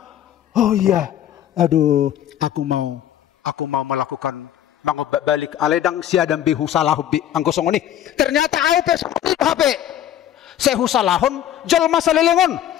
Oh iya. Aduh. Aku mau melakukan. Mengobak balik. Aledang si Adam bihu salahu bi. Anggosong ini. Ternyata HP. Sehu salahun. Jol masa lelengon.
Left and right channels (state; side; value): quieter; right; 11.0 dB